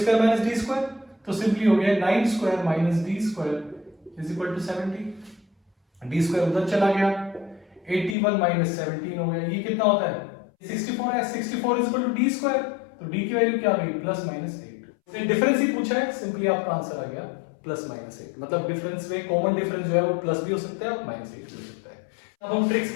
minus D square. तो सिंपली हो गया 9 square minus D square is equal to 70। D square उधर चला गया, 81 माइनस 17 हो गया। ये कितना होता है? 64 है। 64 is equal to D square. तो डी की वैल्यू क्या आ गई? Plus minus 8। डिफरेंस ही पूछा है, सिंपली आपका आंसर आ गया प्लस माइनस 8। मतलब डिफरेंस में कॉमन डिफरेंस जो है वो प्लस भी हो सकता है और माइनस 8 भी हो सकता है। अब हम ट्रिक्स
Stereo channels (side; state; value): right; drops out; at 8.2 s